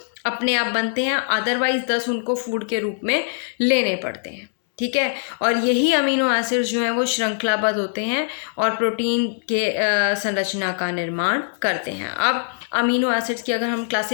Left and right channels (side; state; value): right; silent; digital silence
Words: अपने आप बनते हैं, अदरवाइज 10 उनको फूड के रूप में लेने पड़ते हैं। ठीक है, और यही अमीनो एसिड्स जो हैं वो श्रृंखलाबद्ध होते हैं और प्रोटीन के संरचना का निर्माण करते हैं। अब अमीनो एसिड्स की अगर हम